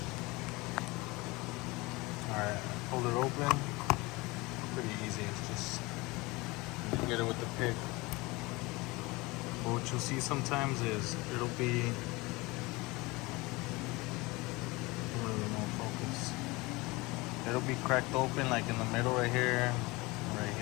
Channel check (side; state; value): right; quieter; 23.4 dB